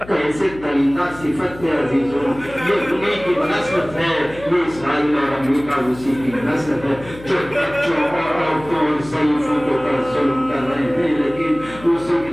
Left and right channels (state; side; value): noise; left; hum, 17 dB below the sound